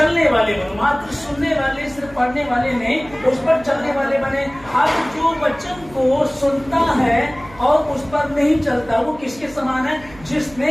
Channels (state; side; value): noise; right; hum, 21 dB below the sound